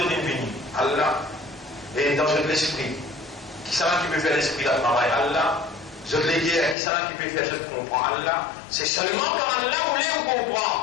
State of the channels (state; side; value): drops out; right; at 6.8 s